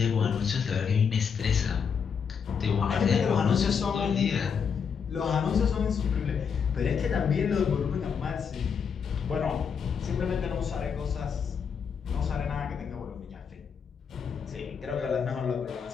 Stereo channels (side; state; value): right; quieter; 6.6 dB